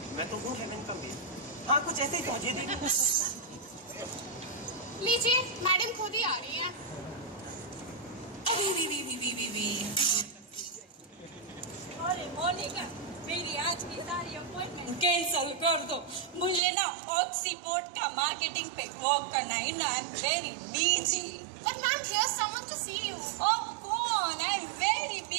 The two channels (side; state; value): left; drops out; at 16.6 s